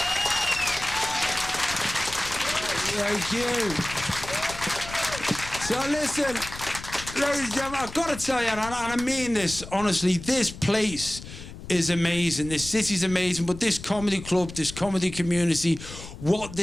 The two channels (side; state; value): left; noise; rumble, 13 dB below the sound